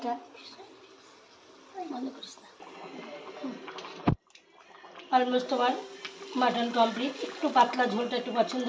মনে করিস না। অলমোস্ট আমার মাটন কমপ্লিট। একটু পাতলা ঝোলটা একটু পছন্দ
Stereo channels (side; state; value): both; identical; correlation 1.00